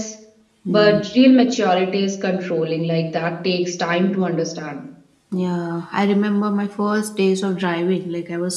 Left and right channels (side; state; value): both; identical; correlation 1.00